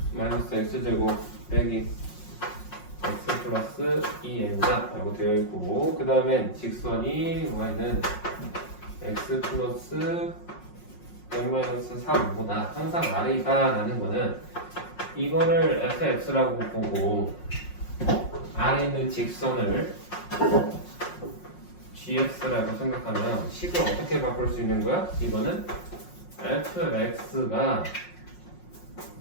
마이너스 x제곱 빼기 x 플러스 2n자 라고 되어 있고 그 다음엔 직선이 y는 x 플러스 n-3보다 항상 아래이다 라는 거는 이거를 fx라고 보고 아래 있는 직선을 gx라고 생각하면 식을 어떻게 바꿀 수 있는 거야? 이거는 fx가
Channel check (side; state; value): right; late; 5.5 ms